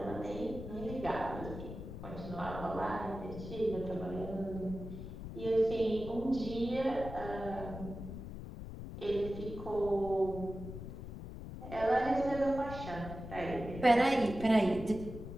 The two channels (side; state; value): left; noise; rumble, 10 dB below the sound